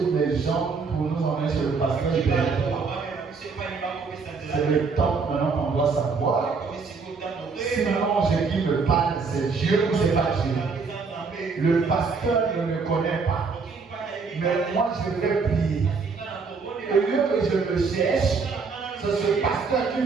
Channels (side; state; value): left; quieter; 4.8 dB